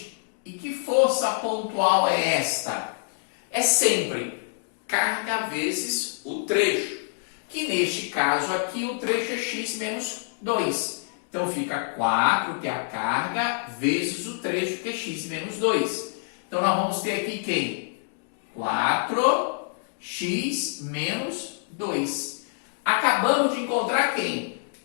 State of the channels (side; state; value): right; silent; digital silence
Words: E que força pontual é esta? É sempre carga vezes o trecho, que neste caso aqui o trecho é x menos 2. Então fica 4, que é a carga, vezes o trecho, que é x menos 2. Então nós vamos ter aqui quem? 4x menos 2. Acabamos de encontrar quem?